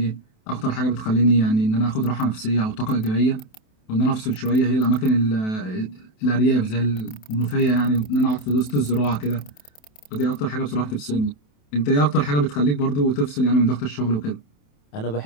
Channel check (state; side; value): late; right; 27 ms